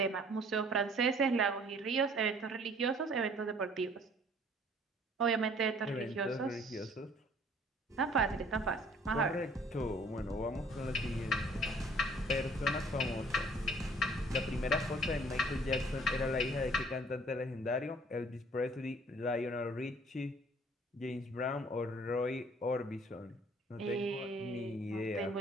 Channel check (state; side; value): normal; both; correlation 0.56